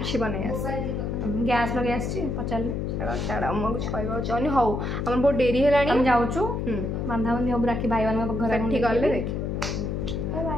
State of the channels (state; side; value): noise; left; hum, 2 dB below the sound